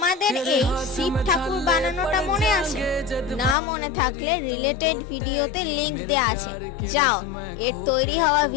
এই শিব ঠাকুর বানানোটা মনে আছে? না মনে থাকলে রিলেটেড ভিডিওতে লিংক দেওয়া আছে, যাও এর তৈরি হওয়া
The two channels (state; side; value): drops out; right; at 3.6 s